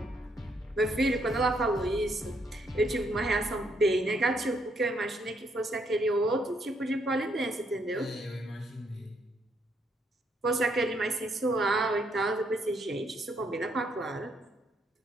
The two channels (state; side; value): normal; both; correlation 0.73